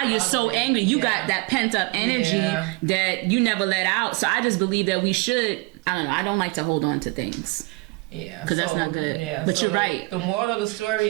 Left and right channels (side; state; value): left; quieter; 25.7 dB